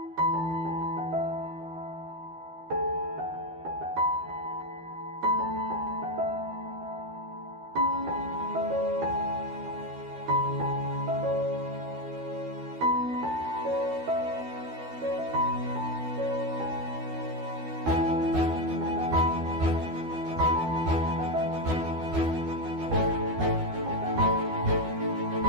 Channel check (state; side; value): late; left; 12 ms